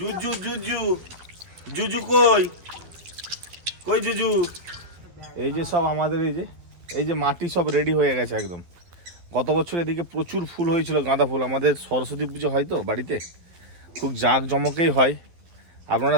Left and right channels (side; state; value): left; late; 12 ms